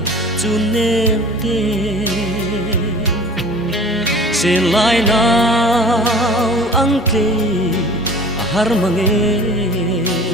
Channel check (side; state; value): both; normal; correlation 0.43